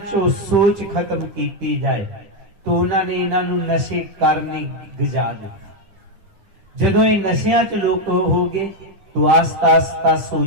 चो सोच खत्म की जाए, तो उन्होंने इन्हों नशे करने गजा दिया। जदों ये नशियां च लोग हो गए तो आस्ता आस्ता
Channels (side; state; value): left; late; 10 ms